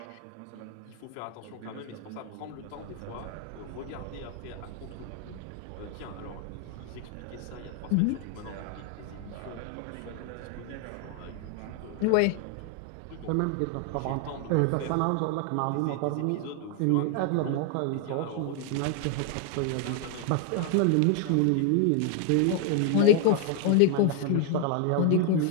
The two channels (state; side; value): different; both; correlation 0.00